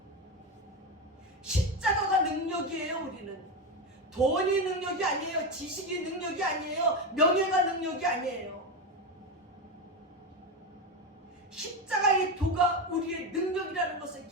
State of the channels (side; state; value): both; normal; correlation 0.15